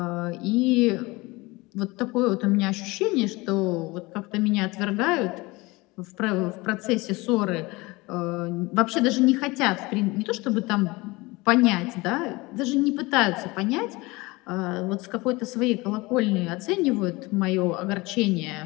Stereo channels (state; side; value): quieter; right; 22.8 dB